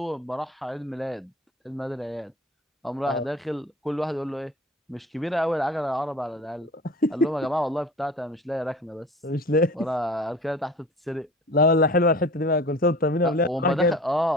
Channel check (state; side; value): normal; both; correlation 0.41